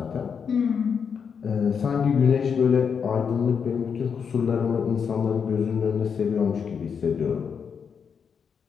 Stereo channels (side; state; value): right; quieter; 6.7 dB